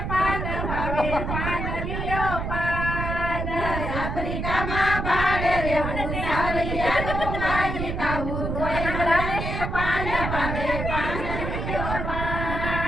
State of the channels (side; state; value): right; noise; rumble, 3 dB below the sound